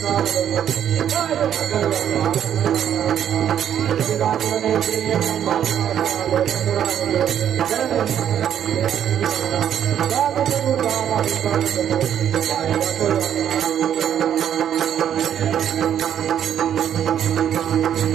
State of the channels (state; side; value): quieter; left; 9.6 dB